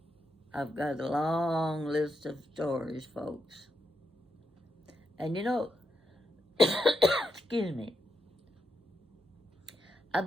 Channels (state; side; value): normal; both; correlation 0.84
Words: I've got a long list of stories, folks. And you know, excuse me, I've